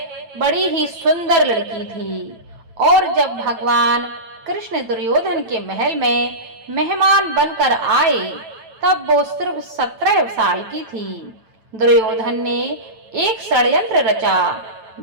बड़ी ही सुंदर लड़की थी और जब भगवान कृष्ण दुर्योधन के महल में मेहमान बनकर आए तब वो सिर्फ 17 साल की थी। दुर्योधन ने एक षड्यंत्र रचा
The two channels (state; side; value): late; left; 9.0 ms